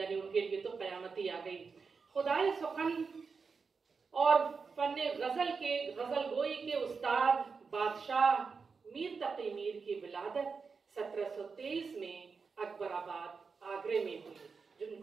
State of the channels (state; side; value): quieter; left; 5.1 dB